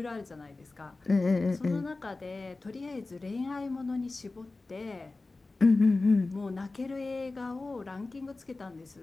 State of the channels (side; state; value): right; quieter; 3.4 dB